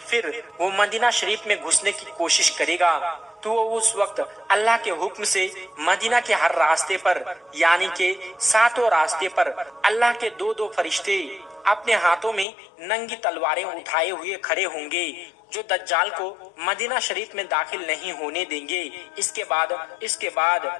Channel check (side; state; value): right; drops out; at 12.5 s